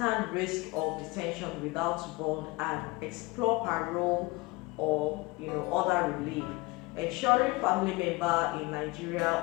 risk of detention without bond and explore parole or other relief. Ensuring family member in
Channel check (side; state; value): right; quieter; 23.2 dB